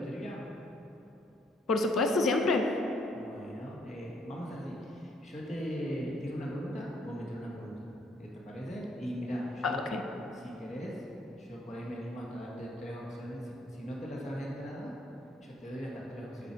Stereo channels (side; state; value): both; normal; correlation 0.68